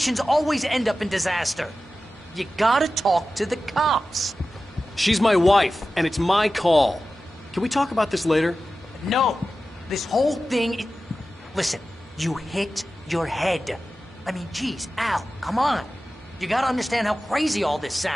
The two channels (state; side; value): normal; both; correlation 0.94